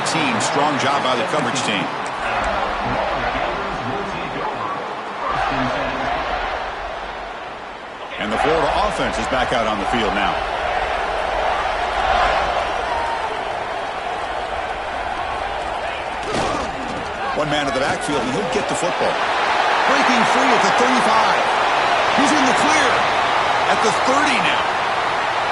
Strong job by the coverage team. And the Florida offense is back out on the field now. One man at the backfield, and he'll get the football. Breaking free at the 35. He's in the clear at the 30 now.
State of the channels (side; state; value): both; identical; correlation 1.00